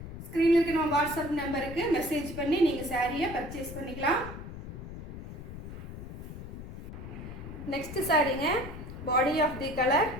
ஸ்க்ரீனில் இருக்க நம்ம வாட்ஸ்அப் நம்பருக்கு மெசேஜ் பண்ணி நீங்கள் சாரியை பர்ச்சேஸ் பண்ணிக்கலாம். நெக்ஸ்ட் சாரீங்க body of the colour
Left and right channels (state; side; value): noise; left; rumble, 10 dB below the sound